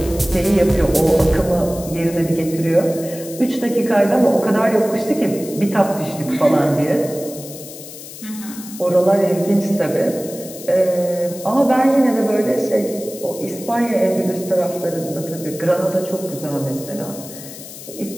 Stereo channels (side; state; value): left; noise; hiss, 14 dB below the sound